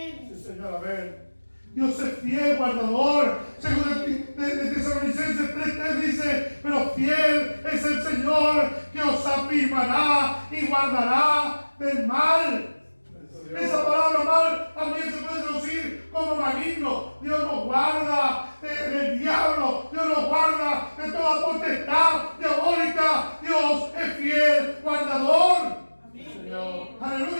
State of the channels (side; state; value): both; inverted; correlation -1.00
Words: Dios es fiel, guardador. Según de Tesalonicenses 3:3 dice, pero fiel es el Señor que os afirmará y guardará del mal. Esa palabra mal también se puede traducir como maligno. Dios nos guarda del diablo. Dios nos guarda de toda potestad diabólica. Dios es fiel, guardador. Amén.